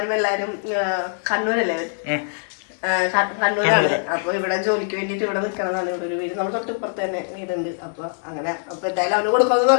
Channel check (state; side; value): silent; right; digital silence